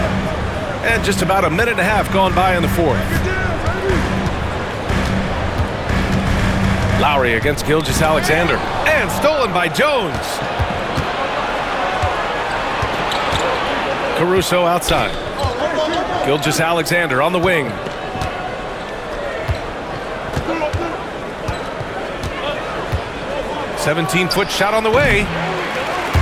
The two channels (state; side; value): identical; both; correlation 1.00